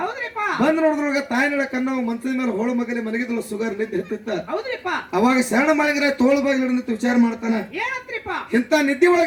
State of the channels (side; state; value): both; identical; correlation 1.00